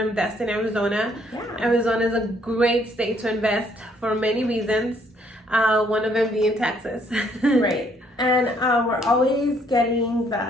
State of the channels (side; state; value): both; normal; correlation 0.67